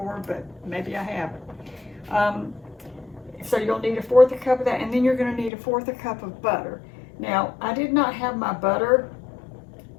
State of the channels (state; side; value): drops out; right; at 5.5 s